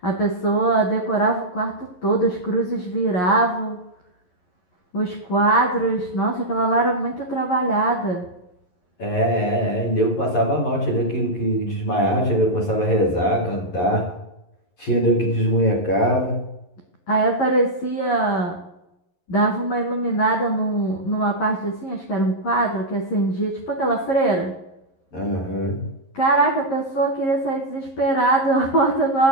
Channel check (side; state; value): right; late; 11 ms